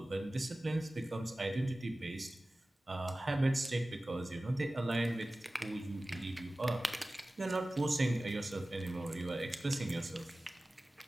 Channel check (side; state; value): both; normal; correlation 0.97